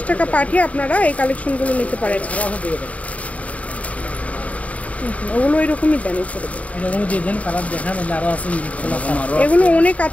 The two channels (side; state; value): right; late; 0.068 ms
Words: টাকা পাঠিয়ে আপনারা এই কালেকশনগুলো নিতে পারেন। ওগুলো এরকমই দেন। এগুলো অনেক